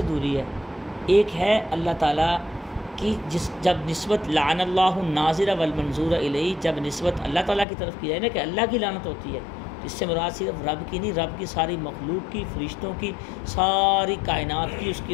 دوری ہے، ایک ہے اللہ تعالیٰ کی جب نسبت لعن اللہ الناظر والمنظور الیہ، جب نسبت اللہ تعالیٰ کی طرف کی جائے نا کہ اللہ کی لعنت ہوتی ہے، اس سے مراد صرف رب کی نہیں، رب کی ساری مخلوق کی، فرشتوں کی، ساری کائنات کی اس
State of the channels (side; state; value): right; drops out; at 7.7 s